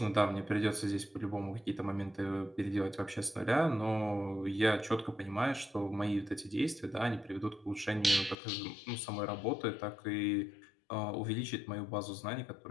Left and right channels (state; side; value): drops out; right; at 8.3 s